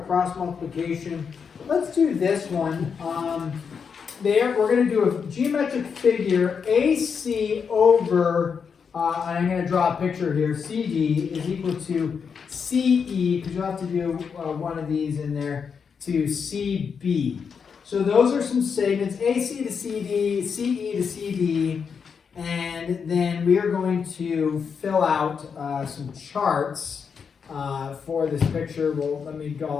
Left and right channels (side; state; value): right; quieter; 6.3 dB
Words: cross multiplication. Let's do this one. We're going to do a geometric figure, AC over, and I'm going to draw a picture here, CD is equal to CE, because you'll have to do one of these in there, to CB. So those are some segments, AC to CD, CE to CD, and then we are going to fill out some charts for this picture. Well, let me